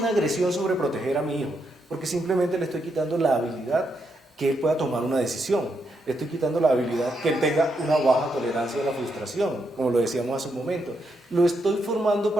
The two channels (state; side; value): normal; both; correlation 0.80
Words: agresión sobreproteger a mi hijo? Porque simplemente le estoy quitando la habilidad que él pueda tomar una decisión. Le estoy quitando la habilidad que él tenga una baja tolerancia a la frustración, como lo decíamos hace un momento. Lo estoy formando